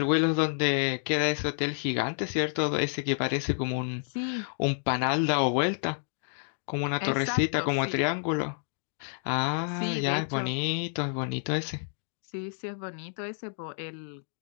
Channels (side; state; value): right; silent; digital silence